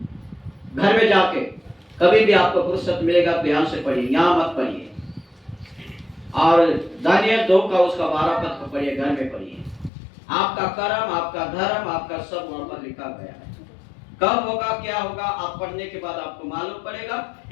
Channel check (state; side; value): drops out; right; at 9.9 s